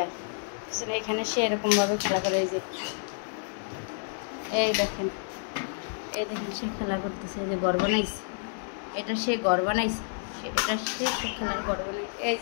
এখানে সে এরকমভাবে খেলা করে। এই দেখেন সে খেলা করতেছে, এই যে ঘর বানাইছে, এটা সে ঘর বানাইছে, সে খেলার ঘর বানাইছে। এই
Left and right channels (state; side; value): silent; right; digital silence